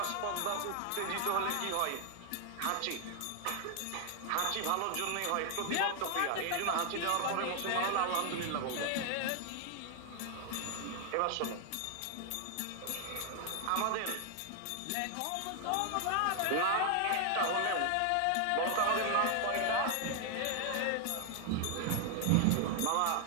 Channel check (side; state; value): both; different; correlation 0.00